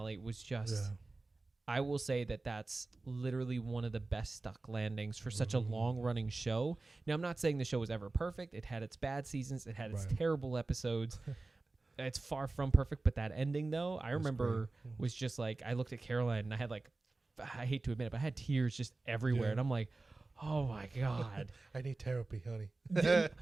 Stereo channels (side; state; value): left; quieter; 3.3 dB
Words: was just, I will say that's literally one of the best stuck landings for such a long running show. Now, I'm not saying the show was ever perfect. It had its bad seasons. It had its terrible episodes. It's far from perfect, but that ending though, I remember was just I looked at Caroline and I had I hate to admit it, but I had tears just everywhere, and I'm like, oh my God, I need therapy, honey. I